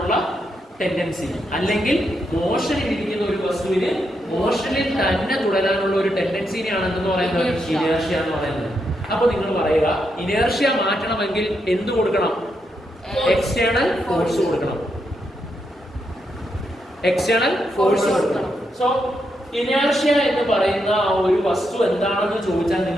ടെൻഡൻസി, അല്ലെങ്കിൽ മോഷനിൽ ഇരിക്കുന്ന ഒരു വസ്തുവിന് മോഷനിൽ തന്നെ തുടരാനുള്ള ഒരു ടെൻഡൻസിനെയാണ് എന്തെന്ന് പറയുന്നത്? ഇനേർഷ്യ എന്ന് പറയുന്നത്. അപ്പൊ നിങ്ങൾ പറയുക, ഇനേർഷ്യ മാറ്റണമെങ്കിൽ എന്ത് കൊടുക്കണം? എക്സ്റ്റേണൽ ഫോഴ്സ് കൊടുക്കണം. സോ ഇനേർഷ്യ എന്ന് പറയുന്ന ആ ഒരു വസ്തു എന്താണെന്ന് ചോദിച്ചാൽ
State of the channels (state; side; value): normal; both; correlation 0.81